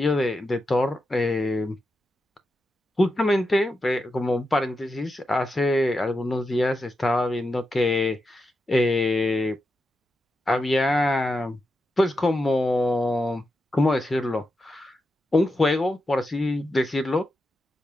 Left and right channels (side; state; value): both; normal; correlation 0.87